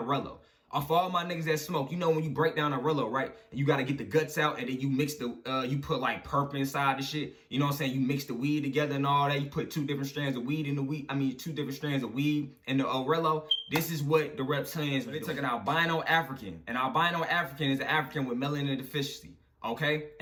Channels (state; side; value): identical; both; correlation 1.00